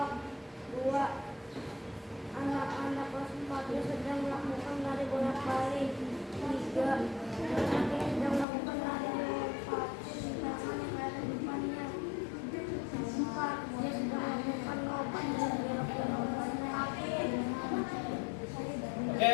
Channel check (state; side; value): drops out; right; at 8.5 s